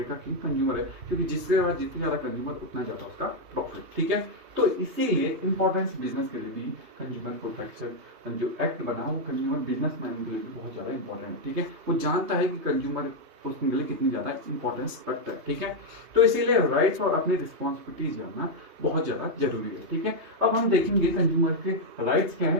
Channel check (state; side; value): late; left; 3.2 ms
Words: का किंग कंज्यूमर है, क्योंकि जिसके बाद जितनी ज्यादा कंज्यूमर उतना ज्यादा उसका प्रॉफिट, ठीक है। तो इसीलिए इंपॉर्टेंस बिजनेस के लिए भी कंज्यूमर प्रोटेक्शन जो एक्ट बना वो कंज्यूमर बिजनेसमैन के लिए भी बहुत ज्यादा इंपॉर्टेंट है, ठीक है। वो जानता है कि कंज्यूमर उसके लिए कितनी ज्यादा इंपॉर्टेंस रखता है, ठीक है। तो इसीलिए राइट्स और अपनी रिस्पॉन्सिबिलिटीज जानना बहुत ज्यादा जरूरी है, ठीक है। अब हम देखेंगे कंज्यूमर के राइट्स क्या